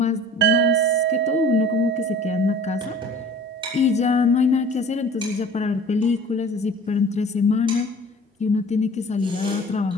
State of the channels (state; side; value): normal; both; correlation 0.45